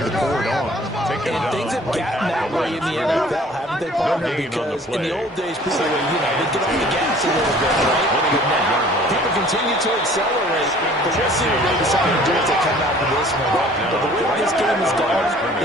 pour it on. And things have gotten that way in the NFL, haven't they, partner? Because in the old days, people were, they'd get off the gas a little bit, right? But now, people continue to accelerate. But we'll see what they decide to do as they come out of this one. But the way this game is going,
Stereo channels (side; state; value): both; normal; correlation 0.52